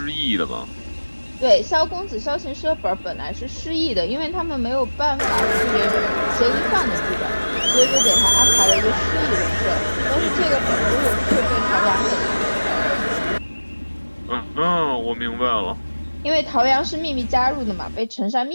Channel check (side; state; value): both; inverted; correlation -1.00